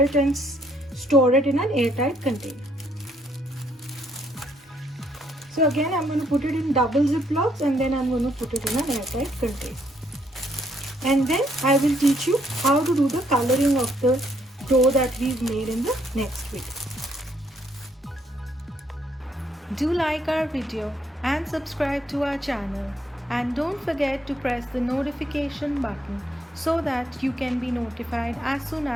and store it in an airtight container. So again, I'm going to put it in double ziplocs and then I'm going to put it in an airtight container. And then I will teach you how to do the coloring of the dough that we've made in the next video. Do like our video and subscribe to our channel. And don't forget to press the notification button so that you can be notified as soon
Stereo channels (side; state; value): both; normal; correlation 0.70